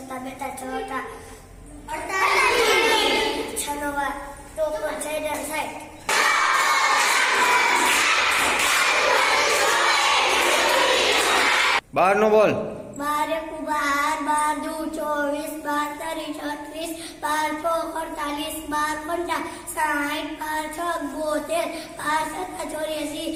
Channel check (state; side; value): identical; both; correlation 1.00